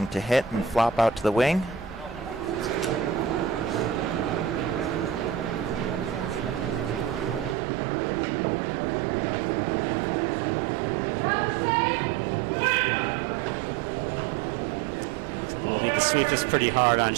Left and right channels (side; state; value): left; drops out; at 7.6 s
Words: to hit and flop out to the wing. Sweep is pretty hard on